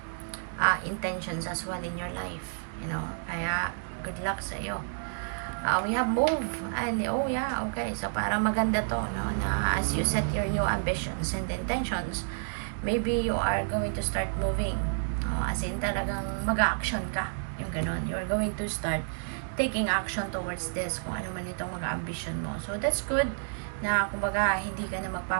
intentions as well in your life. Kaya good luck sa iyo. We have move and okay, so parang maganda to, no, na as you set your new ambitions and intentions, maybe you are going to start moving, as in talagang mag-action ka, yung ganon, you are going to start taking action towards this, kung ano man itong mga ambition mo. So that's good na kumbaga hindi ka na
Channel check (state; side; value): silent; left; digital silence